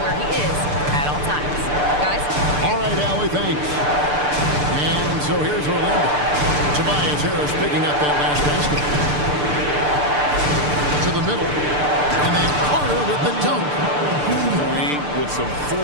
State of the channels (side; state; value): left; late; 6.8 ms